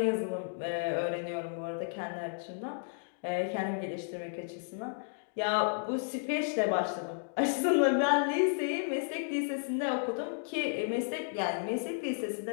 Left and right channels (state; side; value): silent; right; digital silence